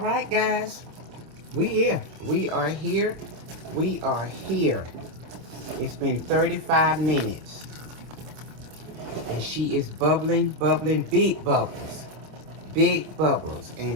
guys. We here. We are here. We are here. It's been 35 minutes. And she is bubbling, bubbling, big bubbles. Big bubbles.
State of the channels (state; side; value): late; left; 26 ms